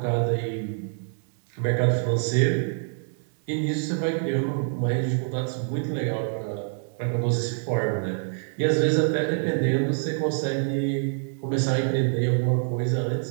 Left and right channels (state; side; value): silent; left; digital silence